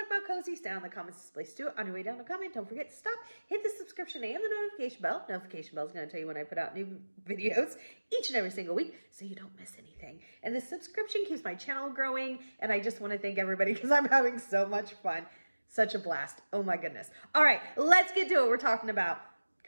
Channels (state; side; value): inverted; both; correlation -1.00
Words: about cozies, down in the comments is the place to do it. On your way down to comment, don't forget to stop, hit the subscription and the notification bell. Notification bell is going to tell you when I put out new videos each and every single week so you don't miss anything. And the subscription keeps my channel growing, and I just want to thank everybody because I'm having so much fun. Such a blast. Oh my goodness. All right, let's get to it. We're talking about